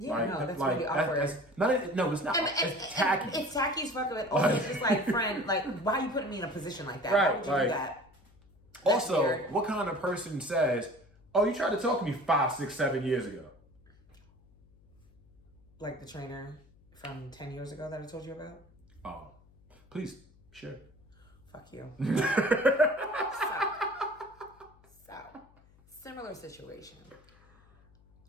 like, no, that's really awkward. No, it's not. It's tacky. It's tacky as fuck. It's just like, friend, like, why are you putting me in a position like that? Right, Why would you do that? That's also, weird. What kind of person says, oh, you tried to talk to me 5, 6, 7 years ago? Like the trainer from 10 years ago that I told you about? Oh, please, share. Fuck you. So, similar situation.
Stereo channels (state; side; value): noise; left; hum, 28 dB below the sound